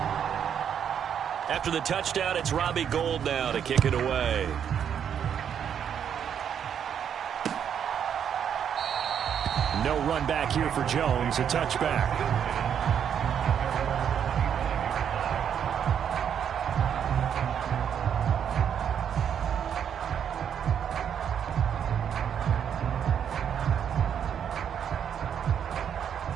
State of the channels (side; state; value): left; quieter; 8.4 dB